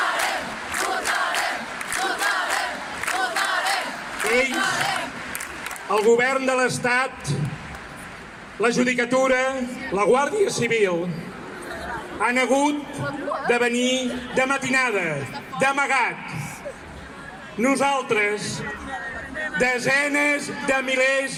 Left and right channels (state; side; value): identical; both; correlation 1.00